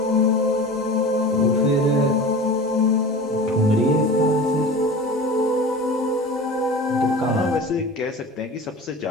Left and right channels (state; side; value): normal; both; correlation 0.35